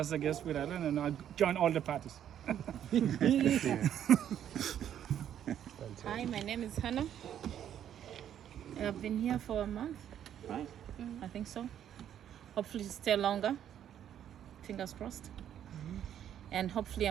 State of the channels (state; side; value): quieter; left; 10.1 dB